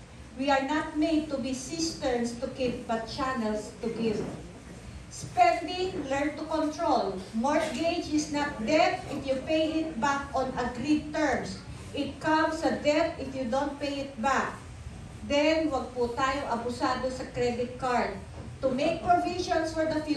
We are not made to be cisterns to keep, but channels to give. Spending, learn to control. Mortgage is not debt if you pay it back on agreed terms. It comes a debt if you don't pay it back. Then, wag po tayo abusado sa credit card. To make provisions for the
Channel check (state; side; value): identical; both; correlation 1.00